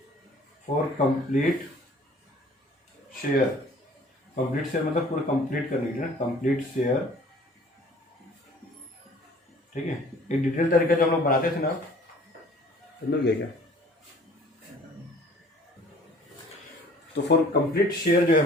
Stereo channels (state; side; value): normal; both; correlation 0.52